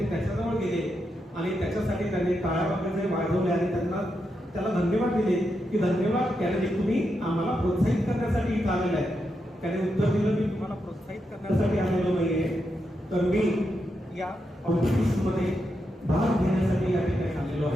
त्याच्याजवळ गेले आणि त्याच्यासाठी त्यांनी टाळ्या वगैरे वाजवले आणि त्याला धन्यवाद दिले की धन्यवाद कॅनडी, तुम्ही आम्हाला प्रोत्साहित करण्यासाठी इथं आलेला आहे. त्याने उत्तर दिलं मी तुम्हाला प्रोत्साहित करण्यासाठी आलेलो नाहीये, तर मी या कॉम्पिटिशनमध्ये भाग घेण्यासाठी या ठिकाणी आलेलो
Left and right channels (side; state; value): both; normal; correlation 0.84